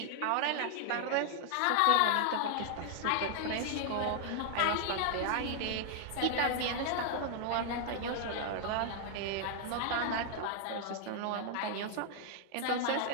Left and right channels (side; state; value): both; different; correlation 0.00